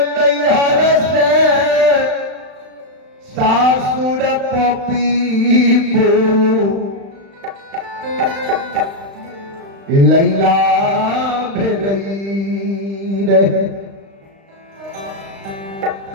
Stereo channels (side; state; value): left; late; 35 ms